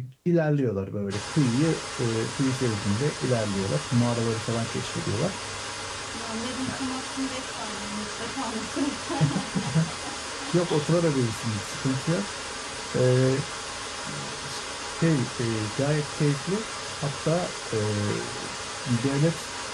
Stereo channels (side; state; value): both; identical; correlation 1.00